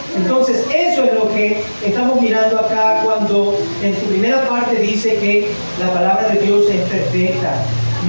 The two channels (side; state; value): both; inverted; correlation -1.00